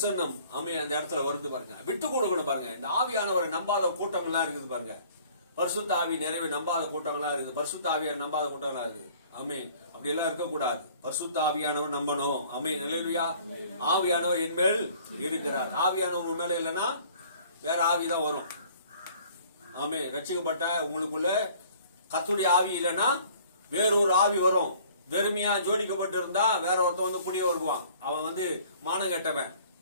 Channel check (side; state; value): both; inverted; correlation -0.54